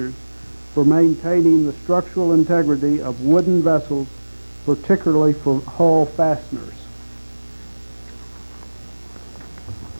for maintaining the structural integrity of wooden vessels, particularly for hull fasteners.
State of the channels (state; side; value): inverted; both; correlation -1.00